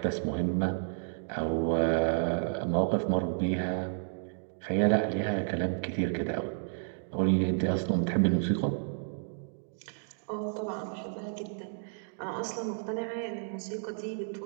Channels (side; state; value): left; silent; digital silence